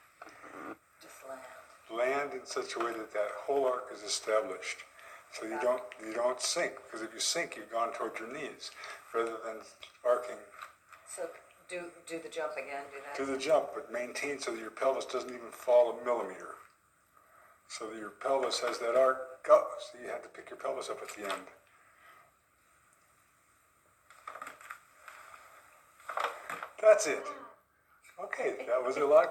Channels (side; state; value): both; identical; correlation 1.00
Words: Just land. Land in such a way that that whole arc is established. So you don't sink, because if you sink, you've gone toward your knees, rather than arcing. So do the jump again. Do that. Do the jump, but maintain so that your pelvis doesn't even fall a millimeter. So that your pelvis has that arc up, so you have to pick your pelvis up at the end. That's it. Okay, that was a